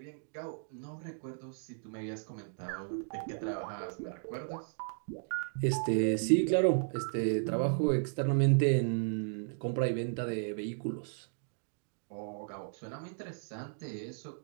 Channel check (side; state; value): left; silent; digital silence